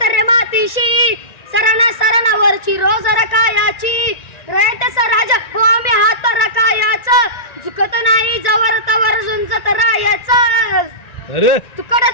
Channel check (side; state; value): right; late; 1.9 ms